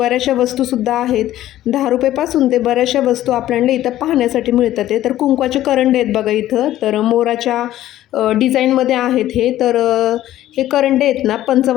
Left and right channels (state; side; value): quieter; right; 13.7 dB